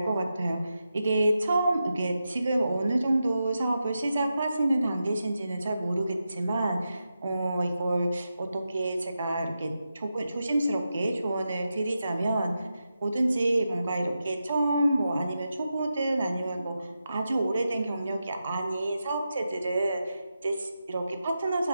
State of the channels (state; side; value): inverted; both; correlation -0.89